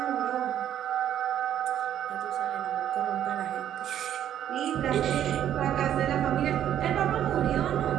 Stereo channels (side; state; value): left; quieter; 10.6 dB